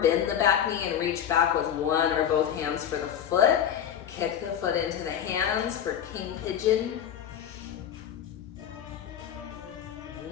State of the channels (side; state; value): right; quieter; 9.2 dB